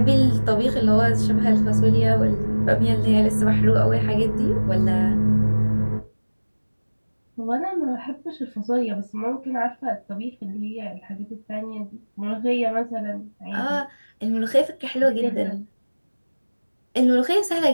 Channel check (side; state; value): both; inverted; correlation -1.00